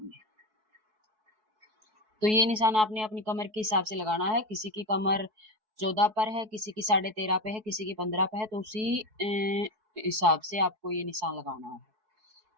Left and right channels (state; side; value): late; left; 4.6 ms